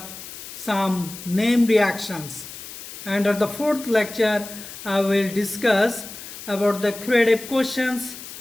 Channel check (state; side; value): noise; left; hiss, 13 dB below the sound